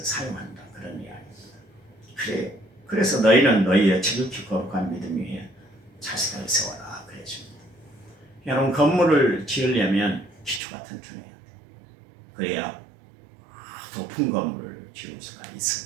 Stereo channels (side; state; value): left; drops out; at 10.6 s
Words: 사용한다. 그런 이야기입니다. 그래서 너희는 너희의 지극히 거룩한 믿음 위에 자신을 세워라. 그랬습니다. 여러분 건물을 지으려면 기초가 튼튼해야 돼요. 그래야 높은 건물을 지을 수가